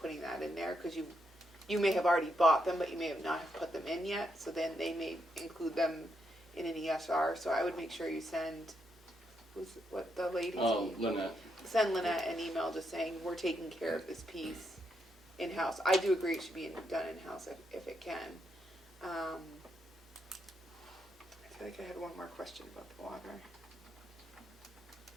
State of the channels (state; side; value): normal; both; correlation 0.80